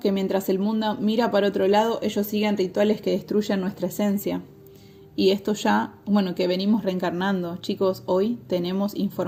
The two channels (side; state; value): both; identical; correlation 1.00